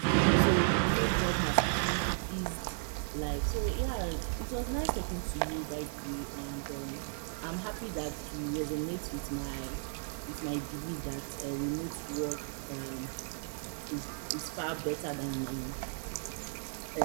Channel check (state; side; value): silent; left; 55 dB below the other